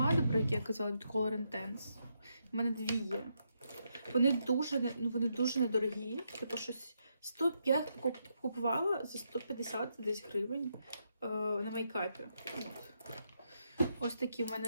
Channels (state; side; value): inverted; both; correlation -0.80